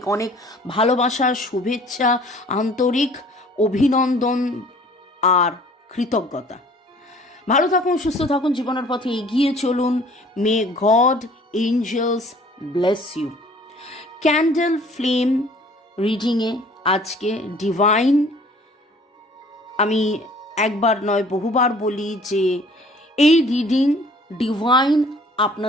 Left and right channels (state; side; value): normal; both; correlation 0.53